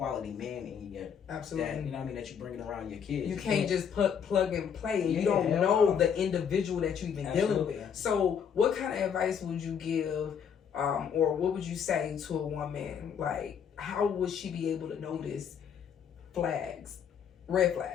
man in you. Absolutely. That, you know what I mean, that you bringing around your kids. You can't just plug and play, and you don't know the individual that you even dealing with. So, what kind of advice would you give, or what would you say to a woman? Like, how would she be able to notice red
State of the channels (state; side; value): quieter; right; 7.6 dB